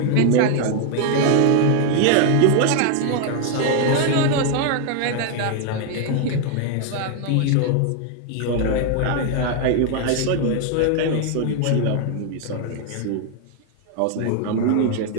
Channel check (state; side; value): different; both; correlation 0.00